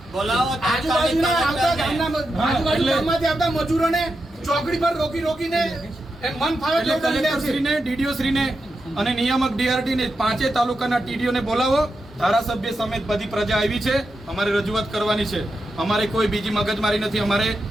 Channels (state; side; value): normal; both; correlation 0.88